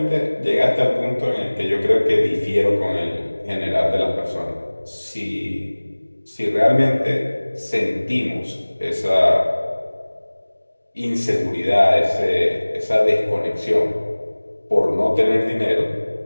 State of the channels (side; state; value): both; inverted; correlation -1.00